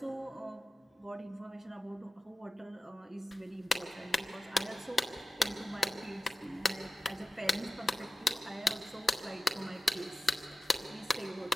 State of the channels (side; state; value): both; normal; correlation 0.94